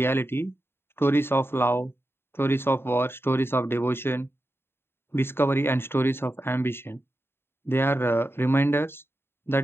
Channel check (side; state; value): right; late; 0.11 ms